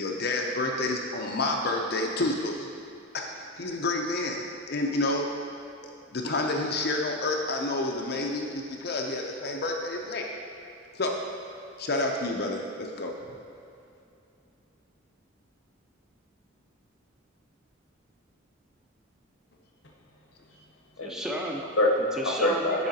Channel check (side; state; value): both; normal; correlation 0.10